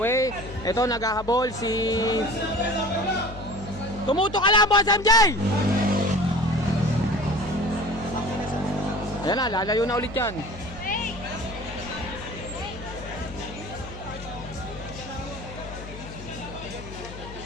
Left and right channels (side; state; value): left; noise; hum, 13 dB below the sound